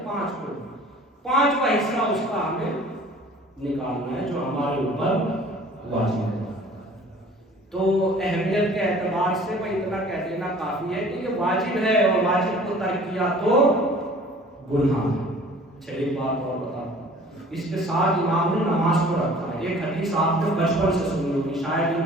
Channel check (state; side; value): normal; both; correlation 0.49